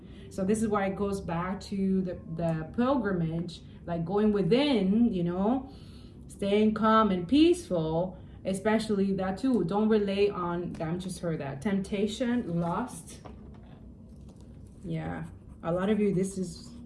So this is why it goes back to the pilgrimage, like going within, you know, staying calm and peaceful, especially that too. Don't rely on, I just heard that, temptation, lust. Yeah, a lot of you, this is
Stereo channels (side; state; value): both; identical; correlation 1.00